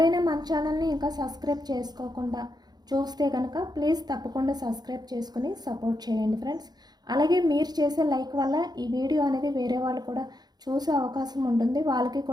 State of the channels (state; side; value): late; left; 0.20 ms